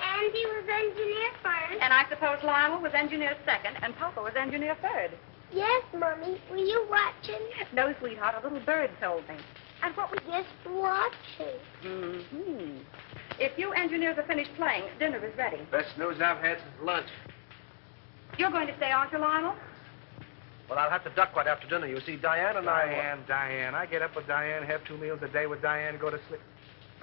was engineer first. And I suppose Lionel was engineer second, and Papa was engineer third. Yes, Mommy. Were you watching? No, sweetheart, a little bird told me. And what was... Just watching. Mm-hmm. If you engineers are finished playing, dinner is ready. Best news I've had since lunch. You're going to stay, aren't you, Lionel? Well, I'll have to duck right after dinner. You see, Diane and I... Diane. I get up with Diane, have 2 meals a day with Diane, go to sleep.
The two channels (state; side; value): silent; right; 56 dB below the other